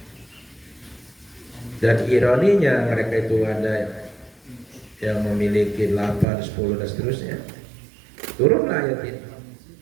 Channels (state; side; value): drops out; left; at 6.2 s